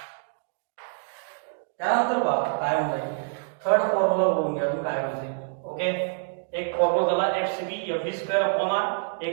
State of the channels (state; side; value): silent; left; digital silence